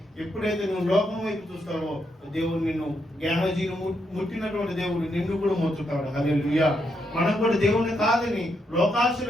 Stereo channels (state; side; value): normal; both; correlation 0.79